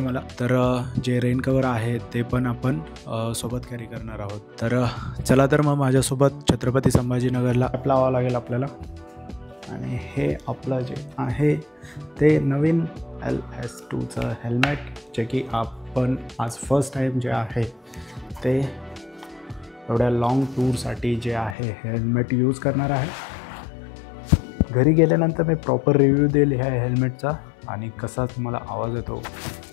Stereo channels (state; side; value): drops out; right; at 21.6 s